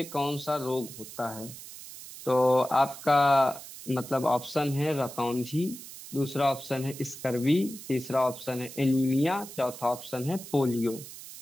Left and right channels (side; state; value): right; noise; hiss, 14 dB below the sound